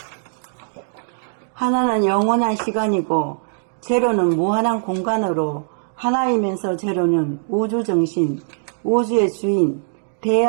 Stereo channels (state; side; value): silent; left; digital silence